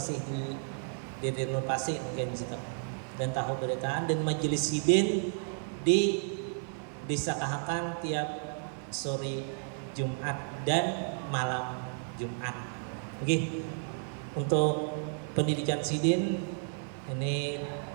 di renovasi mungkin di situ. Dan tahu beritaan dan majelis Sidin di Desa Kahakan tiap sore Jumat dan malam Jumat. Oke. Untuk pendidikan Sidin ini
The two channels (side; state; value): left; silent; 56 dB below the other